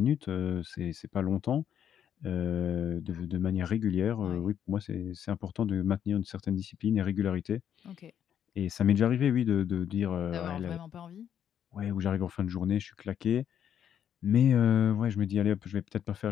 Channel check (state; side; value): quieter; right; 9.2 dB